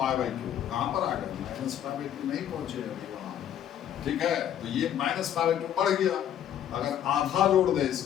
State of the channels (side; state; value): right; quieter; 10.2 dB